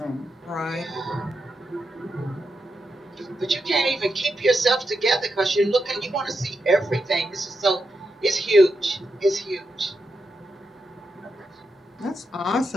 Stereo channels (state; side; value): normal; both; correlation 0.86